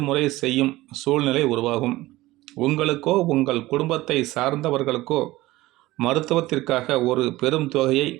செய்யும் சூழ்நிலை உருவாகும். உங்களுக்கோ உங்கள் குடும்பத்தை சார்ந்தவர்களுக்கோ மருத்துவத்திற்காக ஒரு பெரும் தொகையை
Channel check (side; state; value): left; quieter; 18.1 dB